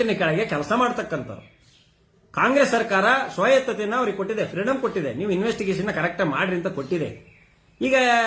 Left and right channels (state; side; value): identical; both; correlation 1.00